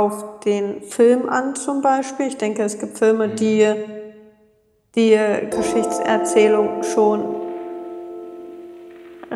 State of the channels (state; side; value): identical; both; correlation 1.00